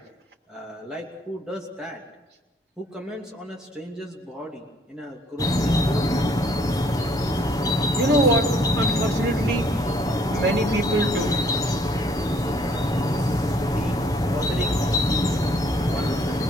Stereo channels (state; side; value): normal; both; correlation 0.63